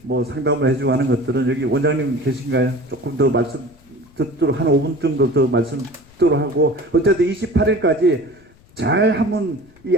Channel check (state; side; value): noise; left; rumble, 27 dB below the sound